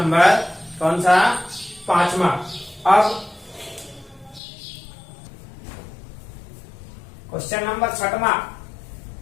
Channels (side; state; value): right; drops out; at 4.4 s